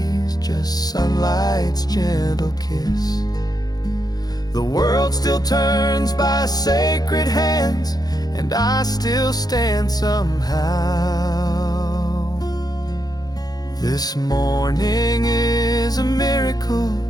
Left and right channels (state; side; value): late; right; 0.19 ms